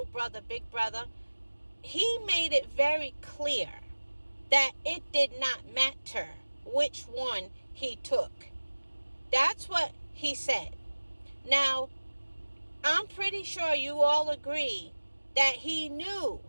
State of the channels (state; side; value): inverted; both; correlation -1.00